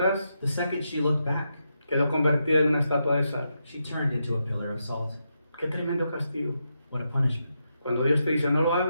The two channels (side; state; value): both; inverted; correlation -0.84